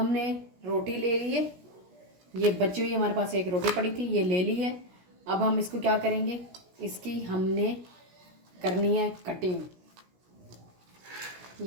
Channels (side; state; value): left; late; 17 ms